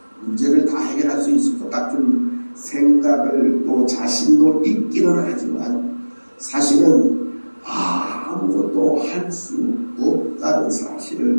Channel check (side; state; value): both; inverted; correlation -1.00